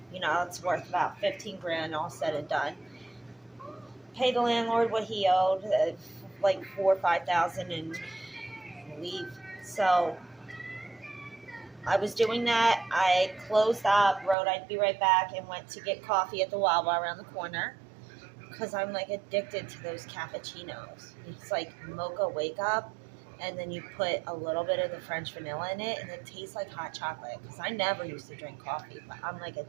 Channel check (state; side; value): drops out; left; at 14.4 s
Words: You know, it's worth about 15 grand all said and done. Pay the landlord what he owed, like 4 or 5,000, and leave. So I was doing that. I closed up, wrote I'd be right back, and went to get coffee at the Wawa around the corner because I'm like addicted to those cappuccinos. It's like mocha wake up, and then you put a little bit of the French vanilla in it, and it tastes like hot chocolate. Because I never used to drink coffee, but I'm like